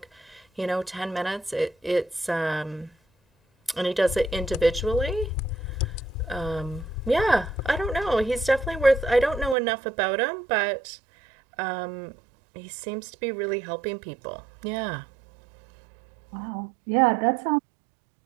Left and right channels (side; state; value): left; drops out; at 9.6 s